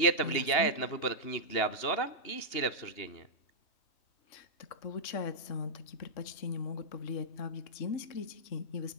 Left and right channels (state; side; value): late; right; 2.8 ms